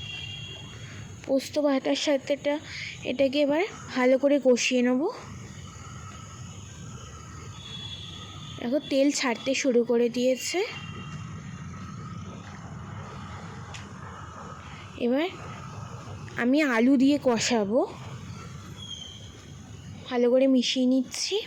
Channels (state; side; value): identical; both; correlation 1.00